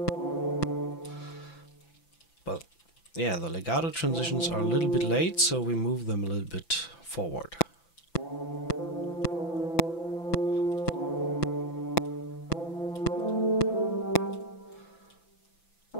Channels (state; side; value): late; right; 5.9 ms